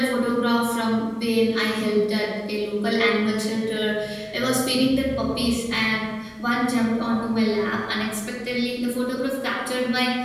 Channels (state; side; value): identical; both; correlation 1.00